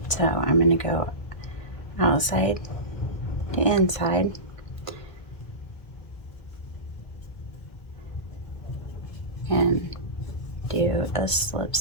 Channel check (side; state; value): right; late; 1.7 ms